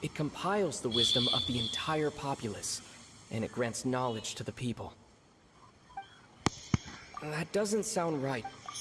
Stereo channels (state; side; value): identical; both; correlation 1.00